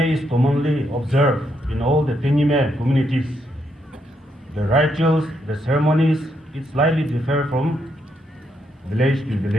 is commonly observed in all the Tenyime communities. The rituals, the ceremonies, it slightly differ from village to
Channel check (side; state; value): both; normal; correlation 0.78